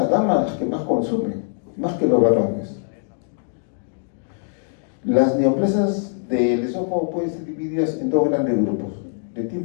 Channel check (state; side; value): silent; right; digital silence